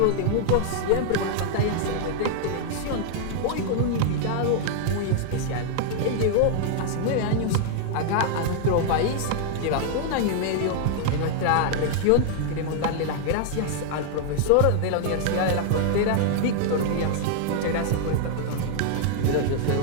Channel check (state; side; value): different; both; correlation 0.00